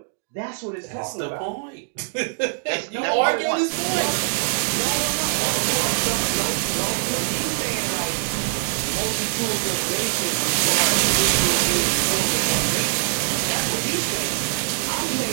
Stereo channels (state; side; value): silent; left; digital silence